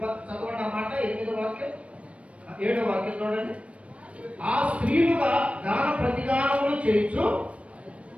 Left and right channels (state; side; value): late; left; 0.063 ms